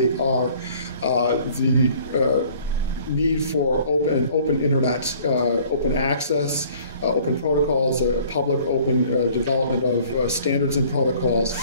are the need for open internet, open access, open protocols, public open development of standards and protocols,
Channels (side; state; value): both; inverted; correlation -0.54